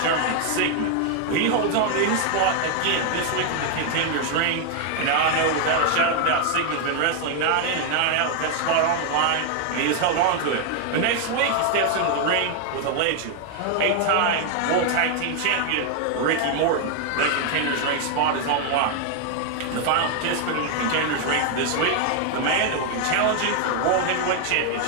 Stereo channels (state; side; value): different; both; correlation 0.00